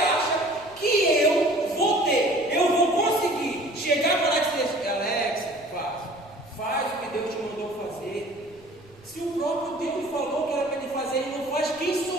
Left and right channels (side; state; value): right; noise; rumble, 26 dB below the sound